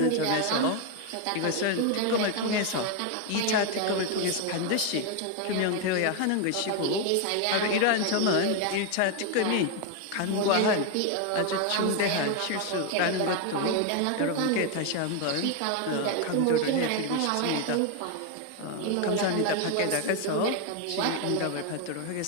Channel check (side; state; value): both; different; correlation 0.01